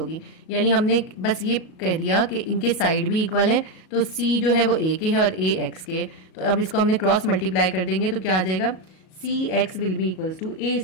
यानी हमने बस ये कह दिया कि इनके साइड भी इक्वल है, तो सी जो है वो ए के है और ए एक्स के। तो अब इसको हमने क्रॉस मल्टीप्लाई कर देंगे तो क्या आ जाएगा? C X will be equals to A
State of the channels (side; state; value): right; late; 37 ms